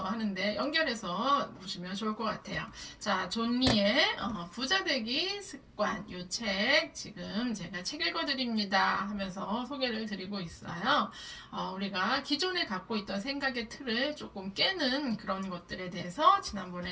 하는데 연결해서 보시면 좋을 것 같아요. 자, 존 리의 부자 되기 습관 이 책 지금 제가 책 읽어드립니다 하면서 소개를 드리고 있어요. 우리가 기존에 갖고 있던 생각의 틀을 조금 깨는 그런 것들에 대해서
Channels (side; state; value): both; identical; correlation 1.00